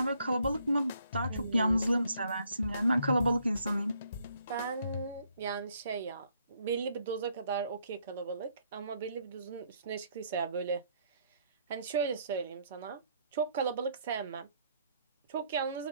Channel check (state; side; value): inverted; both; correlation -0.69